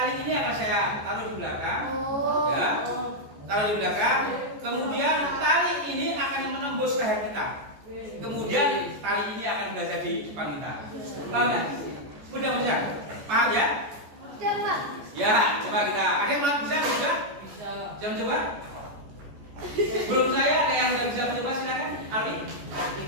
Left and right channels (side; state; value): left; late; 14 ms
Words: ini akan saya taruh di belakang. Ya. Taruh di belakang. Kemudian tali ini akan menembus leher kita. Kemudian tali ini akan berada di depan kita. Paham ya? Mudah-mudahan. Paham ya? Ya, coba kita. Ada yang mau bisa? Bisa? Jangan coba. Belum saya, ada yang bisa mencoba silakan. Alwi?